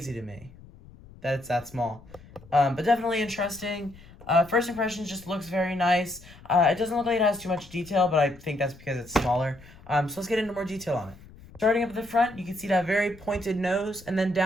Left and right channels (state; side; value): noise; left; rumble, 21 dB below the sound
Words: to me that it's that small. But definitely interesting. First impressions just looks very nice. It doesn't look like it has too much detail, but I think that's because it's smaller. So let's get into more detail on it. Starting up at the front, you can see that very pointed nose, and then